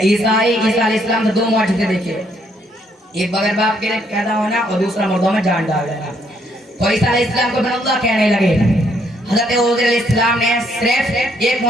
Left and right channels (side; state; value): both; normal; correlation 0.70